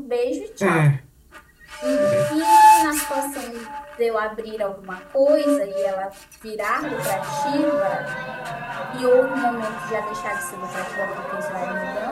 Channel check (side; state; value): both; identical; correlation 1.00